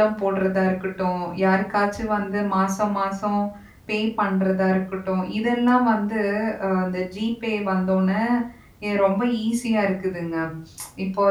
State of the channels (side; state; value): both; identical; correlation 1.00